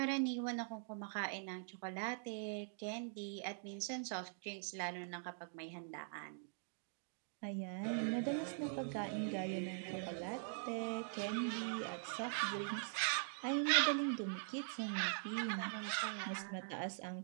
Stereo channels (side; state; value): left; silent; digital silence